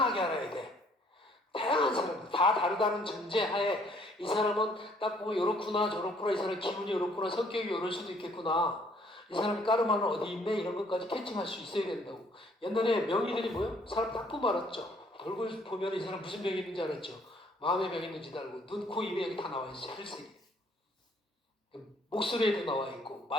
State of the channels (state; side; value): normal; both; correlation 0.63